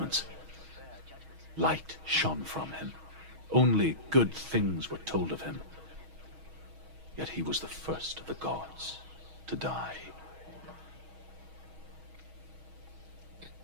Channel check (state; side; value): late; left; 6.3 ms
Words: Light shone from him. Only good things were told of him. Yet he was the first of the gods to die.